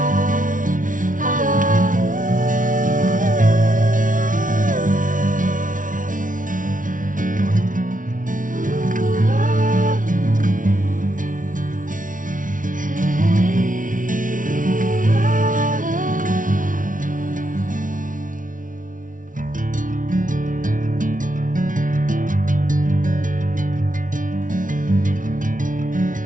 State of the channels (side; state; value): left; late; 0.38 ms